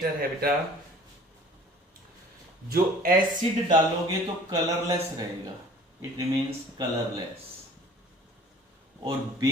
है बेटा जो एसिड डालोगे तो कलरलेस रहेगा, इट रिमेन्स कलरलेस। और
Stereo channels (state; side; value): normal; both; correlation 0.49